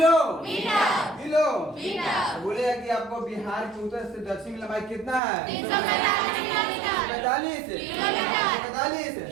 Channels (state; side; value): drops out; left; at 5.2 s